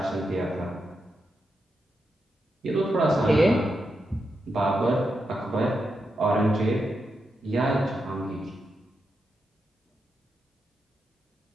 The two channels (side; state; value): both; normal; correlation 0.86